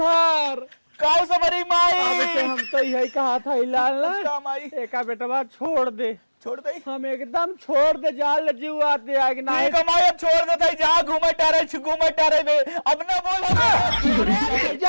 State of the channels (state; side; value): inverted; both; correlation -1.00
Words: काऊ सबरी माई, अब से हम तो यही कहा था हिलाल का माई एका बेटवा छोड़ दे, छोड़ दे। हम एकदम छोड़ दे, जाल जीव आते आग ना नहीं कमाई अब छोड़ देता है, जहाँ घूमे टारे में अब ना बोल।